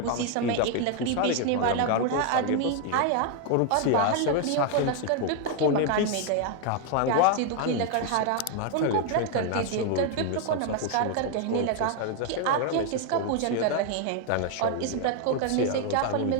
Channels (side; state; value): both; different; correlation 0.01